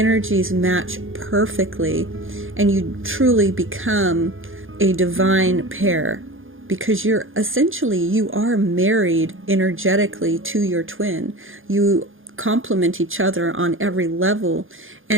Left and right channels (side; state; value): left; late; 0.59 ms